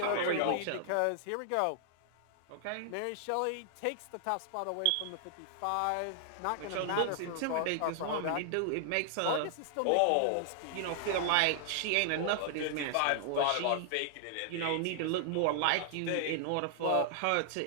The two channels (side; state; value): both; different; correlation 0.00